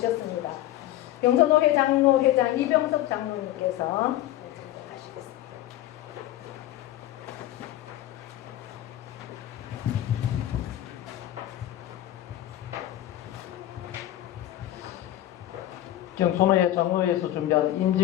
경서노회 장로회장 이병석 장로님께서 하시겠습니다. 경소노회 장로회에서 준비한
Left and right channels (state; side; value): quieter; right; 13.9 dB